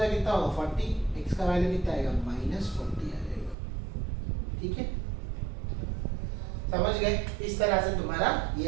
कितना होगा 40, x का वैल्यू कितना आएगा -40 आ जाएगा, ठीक है, समझ गए। इस तरह से तुम्हारा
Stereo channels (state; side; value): drops out; left; at 3.6 s